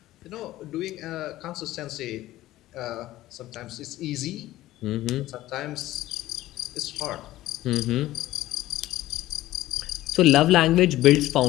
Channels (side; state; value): right; quieter; 15.7 dB